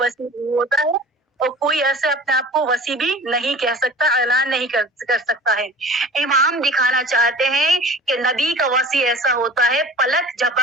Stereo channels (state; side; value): normal; both; correlation 0.42